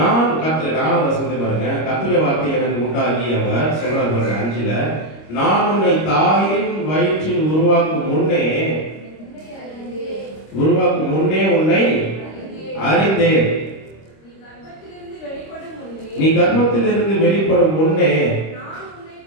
கர்த்தர் 4வது வசனத்தை பாருங்க. கர்த்தருடைய வார்த்தை எனக்கு உண்டாகி அவர் சொல்றாரு பாருங்க 5ல, நான் உன்னை தாயின் வயிற்றில் உருவாக்கும் முன்னே உன்னை அறிந்தேன். நீ கர்ப்பத்திலிருந்து வெளிப்படும் முன்னே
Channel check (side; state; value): right; late; 26 ms